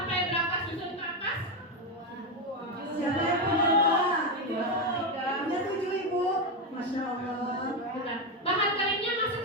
berapa susun ke atas? Siapa yang punya dua? Punya 7 ibu. Masya Allah. Bahan keringnya masuk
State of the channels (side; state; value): both; normal; correlation 0.09